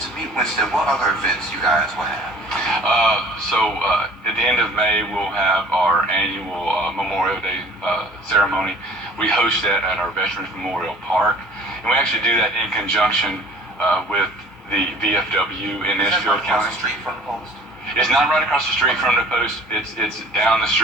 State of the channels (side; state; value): both; normal; correlation 0.49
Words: to me, Winston. What other events you guys will have? At the end of May, we'll have our annual Memorial Day ceremony. We host that at our Veterans Memorial Park, and we actually do that in conjunction with the VFW in Edgefield County. Street from the post? It's not right across the street from the post. It's down the